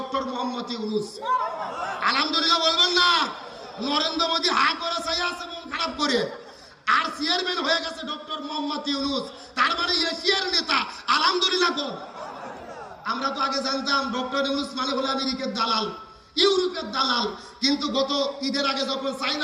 মোহাম্মদ ইউনূস। আলহামদুলিল্লাহ বলবেন না? নরেন্দ্র মোদী হা করে চাই আছে মন খারাপ করে, আর চেয়ারম্যান হয়ে গেছে ডক্টর মোহাম্মদ ইউনূস। তার মানে এশিয়ার নেতা। আলহামদুলিল্লাহ। আমরা তো আগে জানতাম ডক্টর ইউনূস মানে হলো আমেরিকার দালাল, ইউরোপের দালাল। কিন্তু গত ঈদের আগে যখন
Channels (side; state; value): both; identical; correlation 1.00